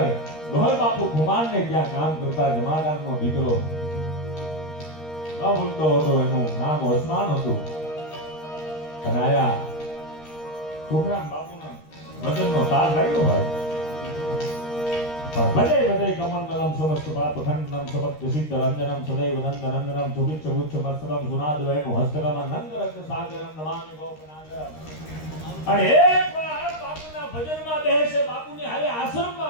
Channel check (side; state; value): right; late; 13 ms